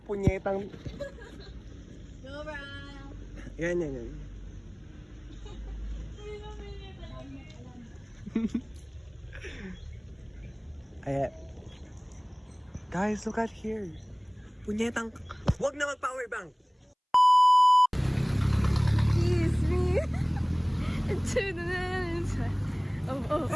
punyetang... Yan. Ayan. Guys, look at here. Punyetang... Huwag na mag-power bank! Kiss me. Into the inside.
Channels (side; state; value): both; identical; correlation 1.00